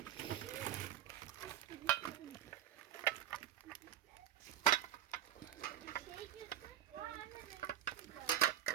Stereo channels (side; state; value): left; quieter; 11.2 dB